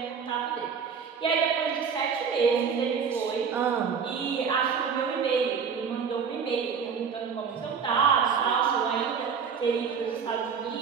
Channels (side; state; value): left; quieter; 6.4 dB